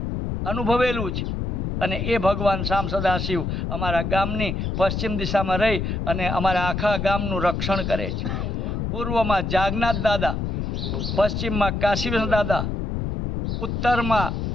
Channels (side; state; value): left; noise; rumble, 2 dB below the sound